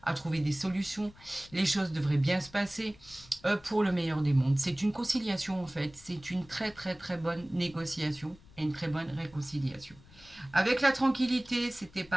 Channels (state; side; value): noise; left; rumble, 24 dB below the sound